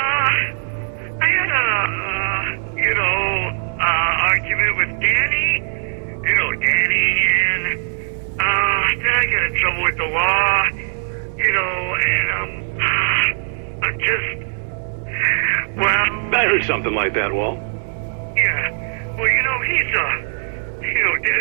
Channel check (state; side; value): silent; left; digital silence